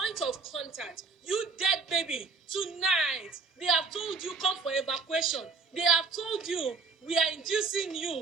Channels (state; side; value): quieter; left; 4.6 dB